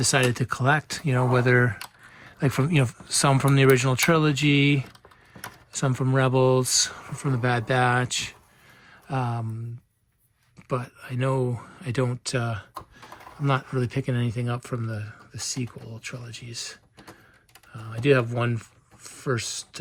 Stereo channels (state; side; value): identical; both; correlation 1.00